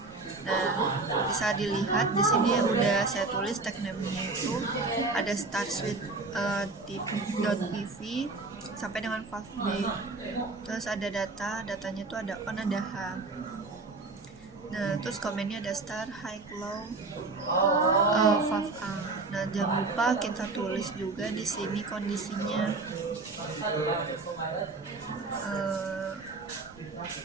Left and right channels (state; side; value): quieter; left; 3.6 dB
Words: Nah, bisa dilihat di sini udah saya tulis tag name-nya itu ada start switch .pv sampai dengan valve B. Terus ada datanya itu ada on, ada H. Nah, terus komennya ada start, high, low, valve A. Nah, jangan lupa kita tulis juga di sini kondisinya.